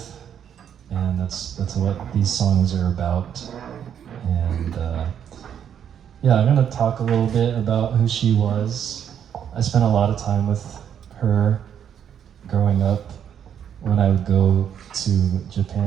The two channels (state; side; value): quieter; left; 8.8 dB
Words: and that's what these songs are about. And yeah, I'm gonna talk a little bit about who she was. I spent a lot of time with her growing up. When I would go to